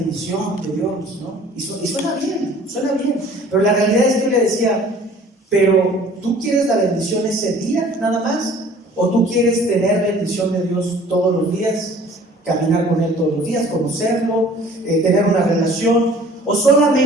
de Dios, ¿no? Y suena bien. Pero la realidad es que yo le decía, pero ¿tú quieres la bendición ese día, nada más? ¿O tú quieres tener bendición de Dios todos los días? Caminar con Él todos los días, conocerlo, tener una relación, o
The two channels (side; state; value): both; normal; correlation 0.51